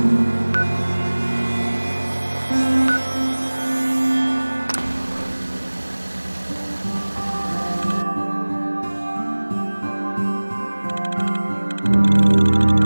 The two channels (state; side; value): inverted; both; correlation -1.00